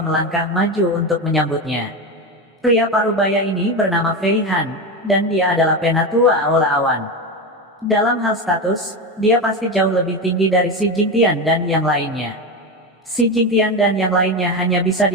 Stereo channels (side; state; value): both; normal; correlation 0.17